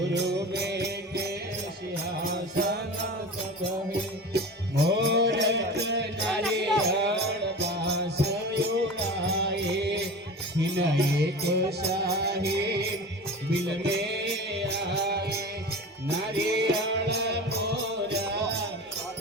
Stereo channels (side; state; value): both; normal; correlation 0.33